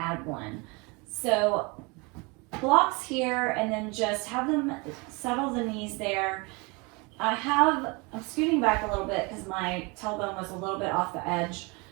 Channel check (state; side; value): quieter; left; 28.2 dB